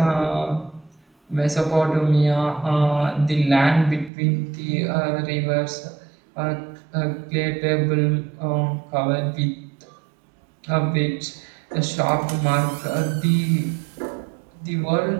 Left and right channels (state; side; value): drops out; left; at 4.1 s